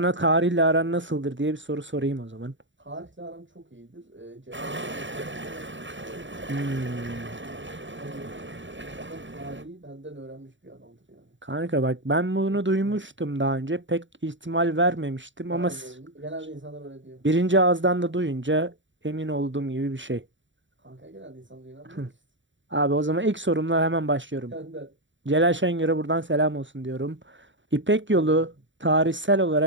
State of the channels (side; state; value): left; late; 0.55 ms